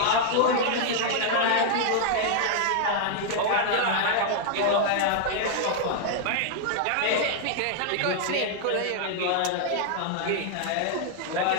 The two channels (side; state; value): both; different; correlation -0.01